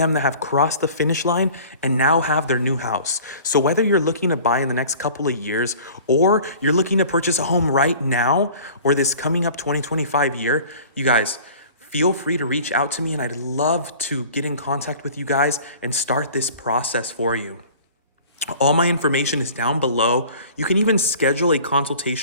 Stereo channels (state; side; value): inverted; both; correlation -0.46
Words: that have crossed the finish line and now have their new house. So whether you're looking to buy in the next couple of years, or you're looking to purchase a home right now, or this coming up 2025 year, you guys, feel free to reach out to me, and I'd love to get in contact with you guys and start this process for you. All my information is down below. You can even schedule a